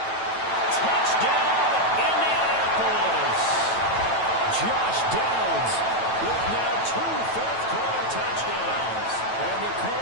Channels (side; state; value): right; late; 9.1 ms